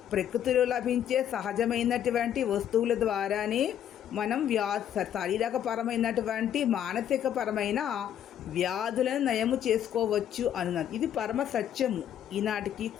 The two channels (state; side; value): quieter; right; 10.0 dB